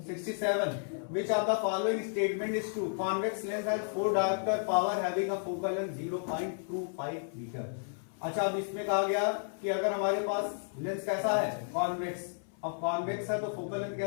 67, which of the following statement is true, convex lens has 4 diopter power having a focal length 0.25 metre. अच्छा, अब इसमें कहा गया कि अगर हमारे पास लेंस कैसा है, कॉन्वेक्स, अब कॉन्वेक्स है तो फोकल लेंथ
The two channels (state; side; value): silent; right; 56 dB below the other